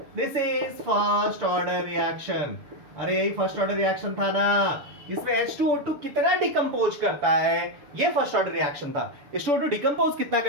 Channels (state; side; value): late; left; 6.9 ms